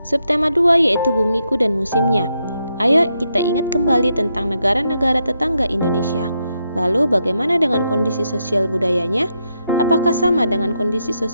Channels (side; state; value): both; inverted; correlation -0.81